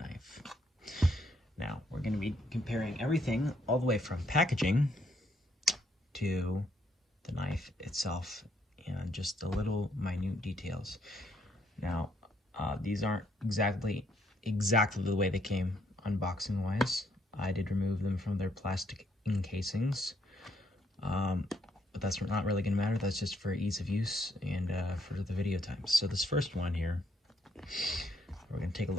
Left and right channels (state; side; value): normal; both; correlation 0.71